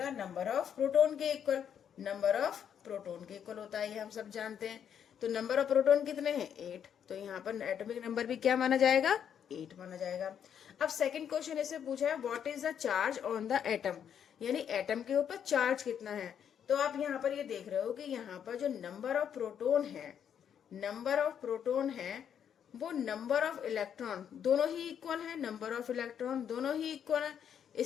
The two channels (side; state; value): right; quieter; 8.6 dB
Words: नंबर ऑफ प्रोटॉन के इक्वल, नंबर ऑफ प्रोटॉन के इक्वल होता है, ये हम सब जानते हैं। तो नंबर ऑफ प्रोटॉन कितने हैं, 8, तो यहाँ पर एटॉमिक नंबर भी क्या माना जाएगा, 8 माना जाएगा। अब सेकंड क्वेश्चन इससे पूछा है, what is the charge on the atom, यानी एटम के ऊपर चार्ज कितना है। तो आप यहाँ पर ये देख रहे हो कि यहाँ पर जो नंबर ऑफ प्रोटॉन है, नंबर ऑफ प्रोटॉन है, वो नंबर ऑफ इलेक्ट्रॉन दोनों ही इक्वल है, नंबर ऑफ इलेक्ट्रॉन दोनों ही इक्वल है।